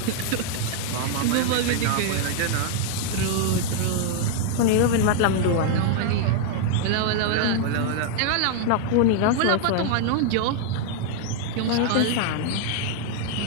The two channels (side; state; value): both; different; correlation 0.00